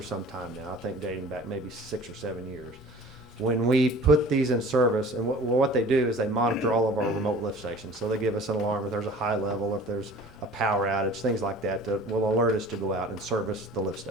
some time now, I think dating back maybe 6 or 7 years. When we put these in service, and what they do is they monitor all of our remote lift stations. So they give us an alarm if there's a high level, if there's a power outage, things like that, that will alert us to go out and service the lift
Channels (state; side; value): normal; both; correlation 0.45